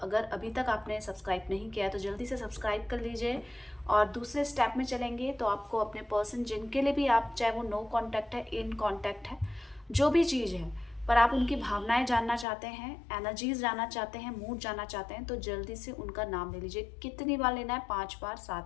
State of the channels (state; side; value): drops out; right; at 12.5 s